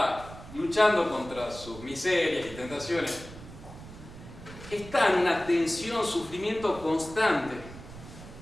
luchando contra sus miserias y tentaciones, está en una tensión, sufrimiento constante,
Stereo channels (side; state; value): right; noise; rumble, 15 dB below the sound